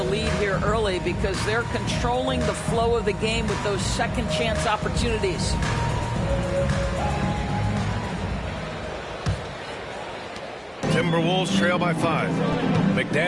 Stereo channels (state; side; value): identical; both; correlation 1.00